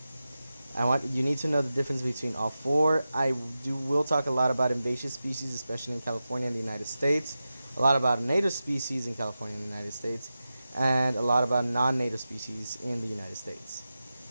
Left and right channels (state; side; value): inverted; both; correlation -0.93